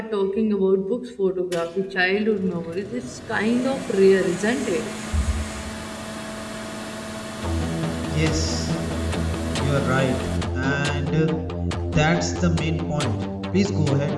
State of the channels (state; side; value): identical; both; correlation 1.00